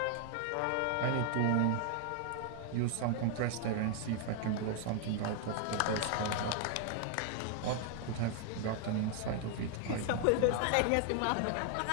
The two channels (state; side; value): different; both; correlation 0.00